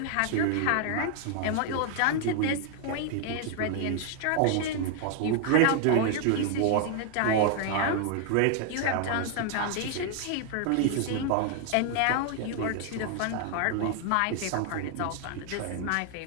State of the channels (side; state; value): both; different; correlation 0.00